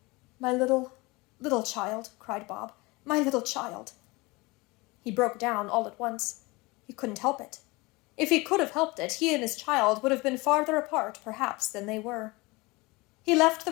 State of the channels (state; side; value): quieter; right; 23.9 dB